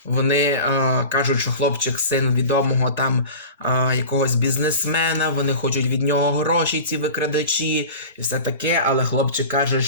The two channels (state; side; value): inverted; both; correlation -0.36